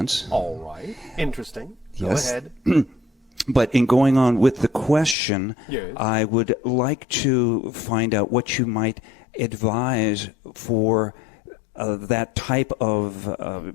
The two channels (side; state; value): right; drops out; at 5.2 s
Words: All right. Interesting. Go Yes. ahead. But in going on with the question, Yes. I would like to find out what you might advise for that type of